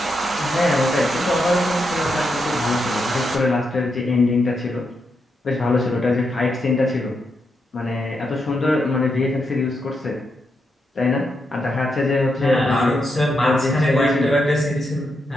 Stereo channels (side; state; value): both; normal; correlation 0.83